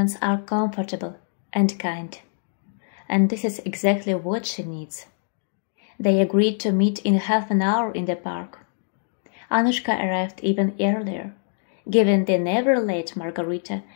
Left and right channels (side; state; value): right; silent; digital silence